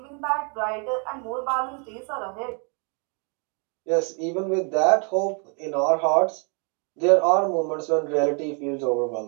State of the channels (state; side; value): quieter; left; 38.1 dB